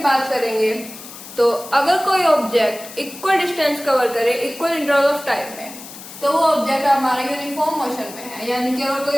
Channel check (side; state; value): left; noise; hiss, 15 dB below the sound